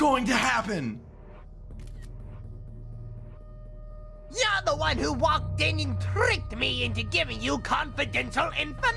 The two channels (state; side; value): identical; both; correlation 1.00